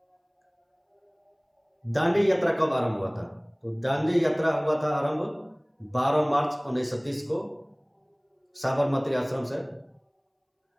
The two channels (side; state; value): both; identical; correlation 1.00